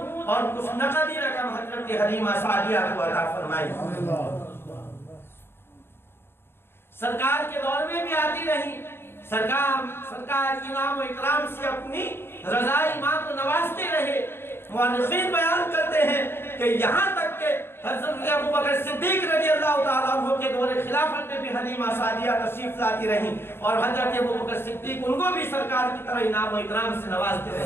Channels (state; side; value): late; right; 0.11 ms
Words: اور کچھ نقدی رقم حضرت حلیمہ سعدیہ کو عطا فرمائی۔ سرکار کے دور میں بھی آتی رہی، سرکار انعام و اکرام سے اپنی رضائی ماں کو نوازتے رہے۔ مورخین بیان کرتے ہیں کہ یہاں تک کہ حضرت ابوبکر صدیق رضی اللہ تعالیٰ عنہ کے دور خلافت میں بھی حلیمہ سعدیہ تشریف لاتی رہیں، اور حضرت ابوبکر صدیق ان کو بھی سرکار کی طرح انعام و اکرام سے نوازتے